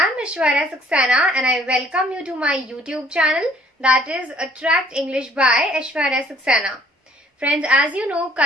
Aishwarya Saxena and I welcome you to my YouTube channel, that is Attract English by Aishwarya Saxena. Friends, as you know,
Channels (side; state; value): both; normal; correlation 0.59